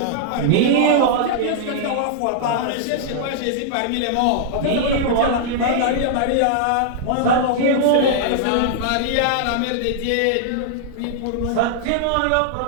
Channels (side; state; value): both; different; correlation -0.01